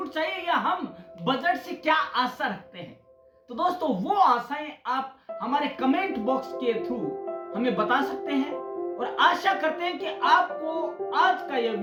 चाहिए, या हम बजट से क्या आशा रखते हैं। तो दोस्तों, वो आशाएं आप हमारे कमेंट बॉक्स के थ्रू हमें बता सकते हैं, और आशा करते हैं कि आपको आज का यह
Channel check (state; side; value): identical; both; correlation 1.00